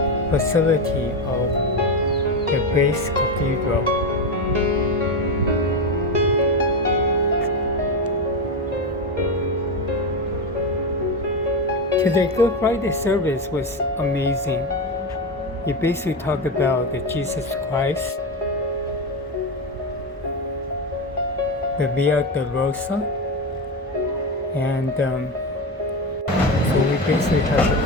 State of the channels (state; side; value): normal; both; correlation 0.15